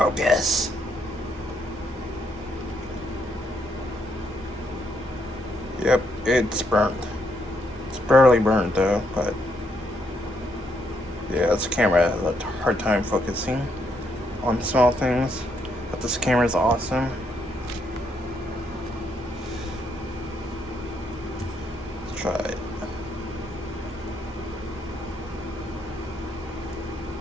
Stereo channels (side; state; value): both; normal; correlation 0.75